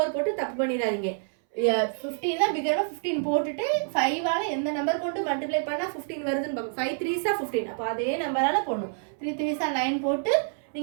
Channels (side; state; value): left; silent; 60 dB below the other